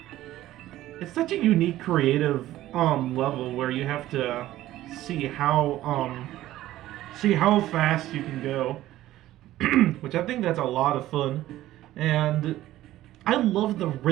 It's such a unique, creative level where you have to see how fast you can go, which I think that's a lot of fun. And I love the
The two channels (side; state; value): left; quieter; 14.7 dB